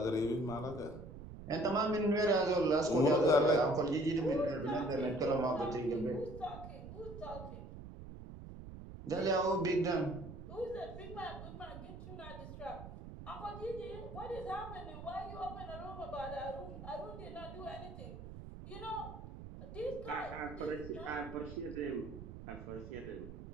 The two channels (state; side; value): noise; right; rumble, 12 dB below the sound